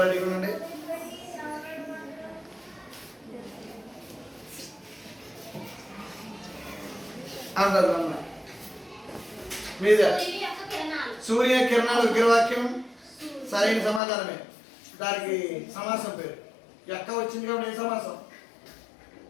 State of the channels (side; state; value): right; drops out; at 14.0 s